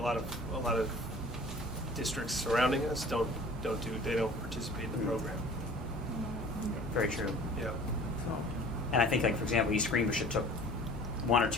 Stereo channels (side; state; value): both; normal; correlation 0.46